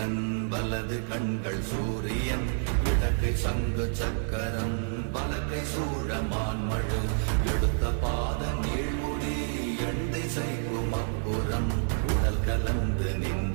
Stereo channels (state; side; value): silent; left; 59 dB below the other